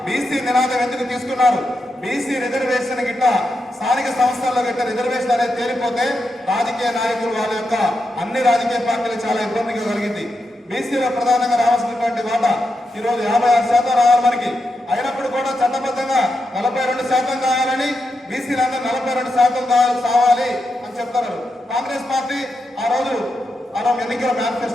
బీసీ నినాదం ఎందుకు తీసుకున్నారు? బీసీ రిజర్వేషన్ గిట్ట స్థానిక సంస్థల్లో గిట్ట రిజర్వేషన్ అనేది తేలిపోతే రాజకీయ నాయకులు వాళ్ళ యొక్క అన్ని రాజకీయ పార్టీలు చాలా ఇబ్బందిగా కలిగింది. బీసీలో ప్రధానంగా రావాల్సినటువంటి వాటా ఈరోజు 56% రావాలి మనకి. అయినప్పుడు కూడా చట్టబద్ధంగా 42% కావాలని బీసీలందరూ 42% కావాలి అని చెప్తున్నారు. కాంగ్రెస్ పార్టీ ఆ రోజు ఎన్నికల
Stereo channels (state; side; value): normal; both; correlation 0.86